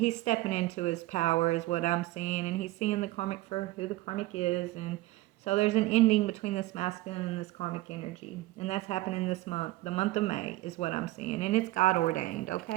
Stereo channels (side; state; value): left; quieter; 18.2 dB